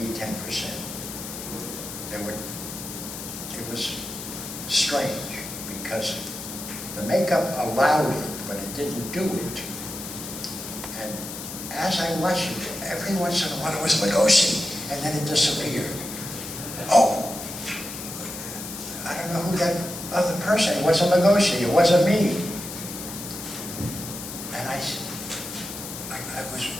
10%. It was strange, because the makeup allowed it, but it didn't do it. And as I watched it, every once in a while it was Lugosi, and then it disappeared. Oh, I don't know who that other person, it wasn't Lugosi, it wasn't me. And I was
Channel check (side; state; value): left; noise; hiss, 9 dB below the sound